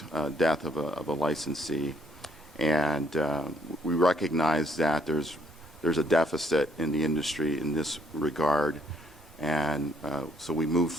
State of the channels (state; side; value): normal; both; correlation 0.67